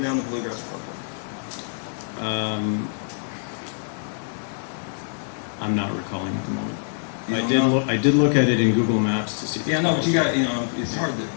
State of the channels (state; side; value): silent; right; digital silence